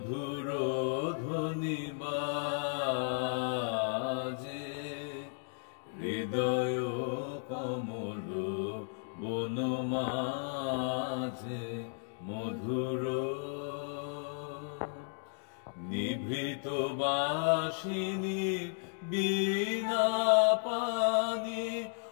ধ্বনি বাজে হৃদয় কমল বন মাঝে মধুর নিভৃত বাসিনী বীণা পানি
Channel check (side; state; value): right; silent; digital silence